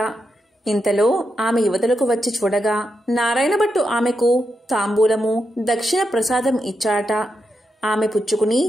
ఇంతలో ఆమె యువతలకు వచ్చి చూడగా నారాయణభట్టు ఆమెకు తాంబూలము, దక్షిణ ప్రసాదం ఇచ్చాడట. ఆమె పుచ్చుకుని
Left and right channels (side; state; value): both; normal; correlation 0.85